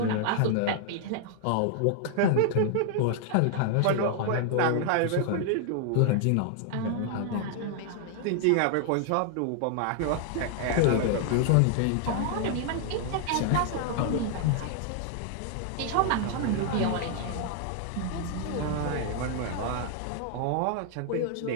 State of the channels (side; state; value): both; different; correlation 0.00